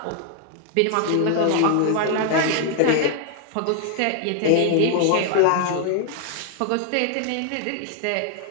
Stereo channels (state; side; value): different; both; correlation 0.00